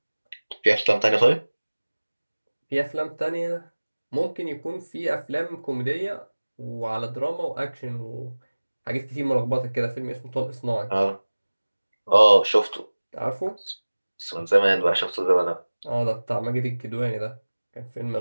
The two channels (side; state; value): both; inverted; correlation -1.00